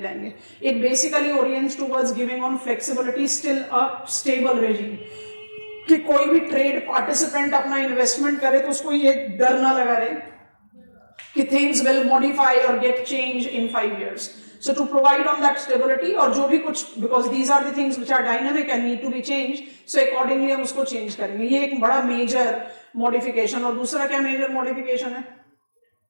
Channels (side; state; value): both; inverted; correlation -1.00